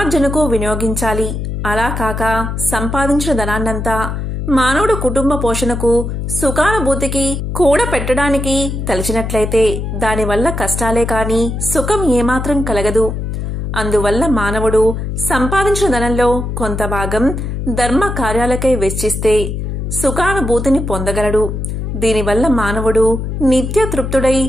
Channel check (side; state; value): left; noise; hum, 4 dB below the sound